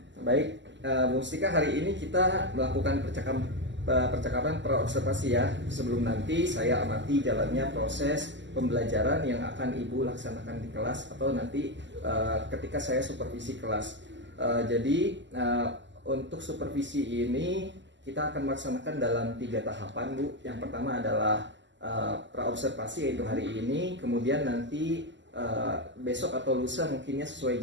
Baik, Bu Mustika, hari ini kita melakukan percakapan praobservasi ya, sebelum nanti saya amati jalannya proses pembelajaran yang akan Ibu laksanakan di kelas atau nanti ketika saya supervisi kelas. Jadi untuk supervisi ini kita akan melaksanakan dalam 3 tahapan, Bu. Yang pertama adalah praobservasi, yaitu hari ini. Kemudian nanti besok atau lusa mungkinnya sesuai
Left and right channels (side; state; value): left; late; 0.53 ms